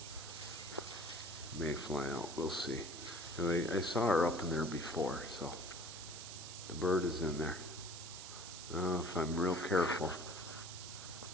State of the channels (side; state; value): right; noise; hiss, 10 dB below the sound